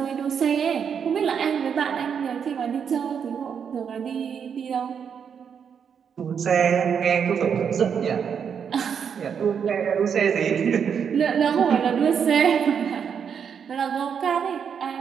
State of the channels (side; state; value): left; quieter; 7.3 dB